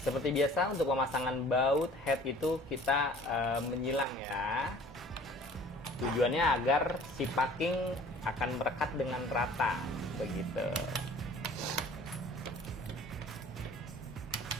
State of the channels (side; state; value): both; normal; correlation 0.49